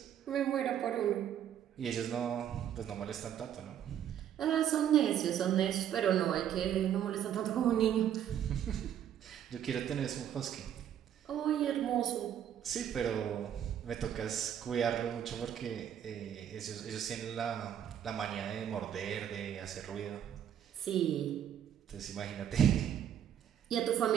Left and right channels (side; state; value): left; quieter; 9.8 dB